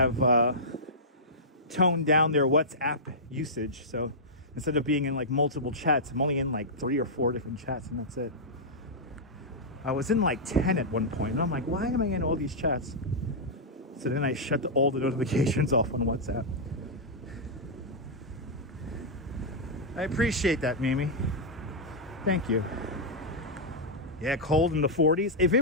toned down their WhatsApp usage. So instead of being in like multiple chats, I'm only in like 3 or 4 different chats, and that's it. I was in like 10 at one point, and I'm like, why am I in all these chats? So then I shut all the notifications off on WhatsApp. I appreciate that, Mimi. Thank you. Yeah, cold in the 40s. If it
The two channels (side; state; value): both; normal; correlation -0.10